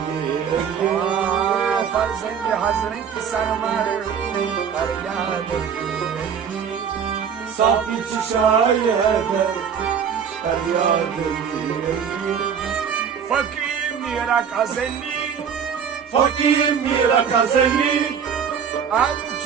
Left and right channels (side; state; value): left; quieter; 7.3 dB